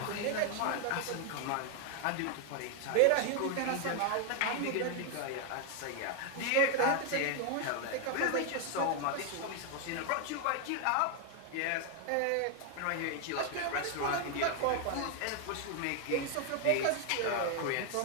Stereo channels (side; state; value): both; different; correlation 0.00